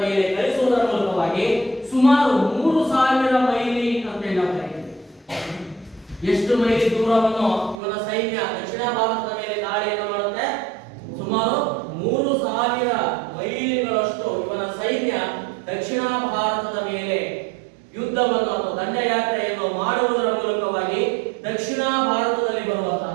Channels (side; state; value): left; drops out; at 7.8 s